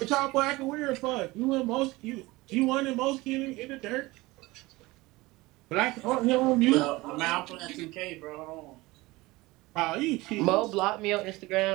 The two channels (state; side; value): quieter; left; 21.0 dB